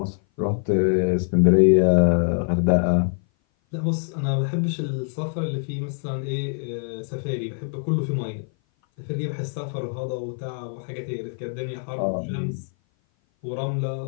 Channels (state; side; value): silent; right; 57 dB below the other